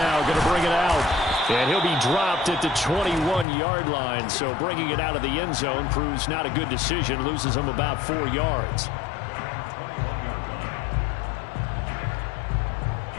going to bring it out. And he'll be dropped at the 21-yard line. So bringing it out of the end zone proves not a good decision. Loses him about 4 yards.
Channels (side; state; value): right; drops out; at 3.5 s